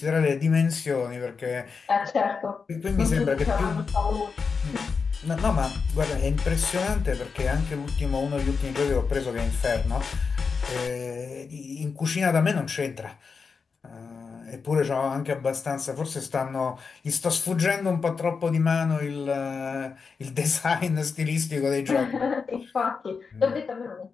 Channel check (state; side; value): quieter; right; 5.3 dB